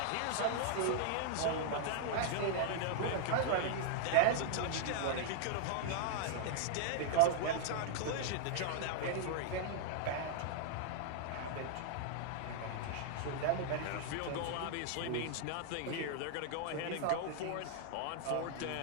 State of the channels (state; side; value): different; both; correlation 0.00